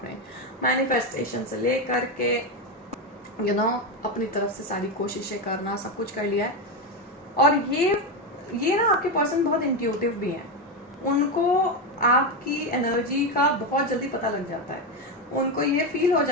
मैनिफेस्टेशन से लेकर के अपनी तरफ से सारी कोशिशें करना, सब कुछ कर लिया है। और ये ना आपके पर्सन बहुत इंट्यूटिव भी हैं, उनको आपकी एनर्जी का बहुत जल्दी पता लग जाता है, उनको ये फील हो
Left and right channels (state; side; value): normal; both; correlation 0.12